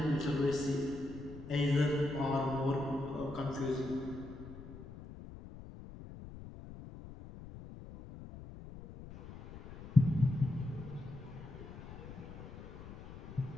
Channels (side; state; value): left; noise; rumble, 14 dB below the sound